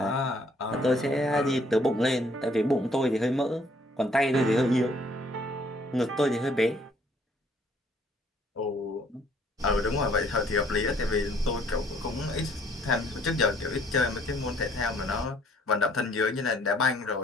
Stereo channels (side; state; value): both; normal; correlation 0.62